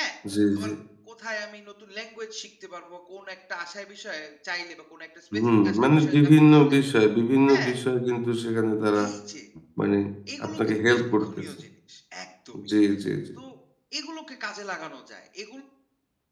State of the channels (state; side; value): identical; both; correlation 1.00